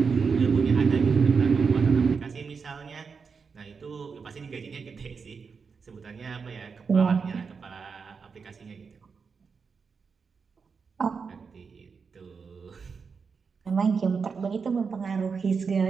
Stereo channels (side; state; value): left; quieter; 5.5 dB